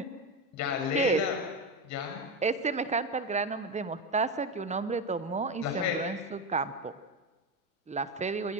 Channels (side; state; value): both; normal; correlation 0.15